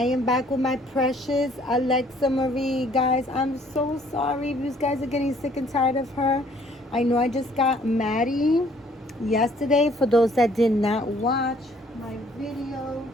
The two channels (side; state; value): both; normal; correlation 0.60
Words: am back with my precious Alexa Marie. Guys, I'm so sorry if you guys are getting sick and tired of her. I know I just got Maddie yesterday. For those that did not watch my video